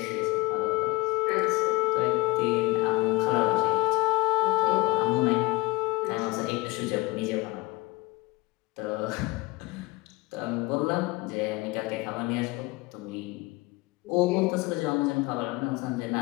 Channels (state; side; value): quieter; right; 22.5 dB